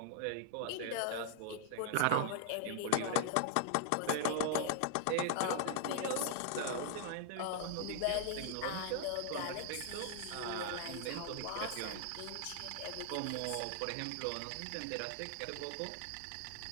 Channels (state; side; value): different; both; correlation 0.00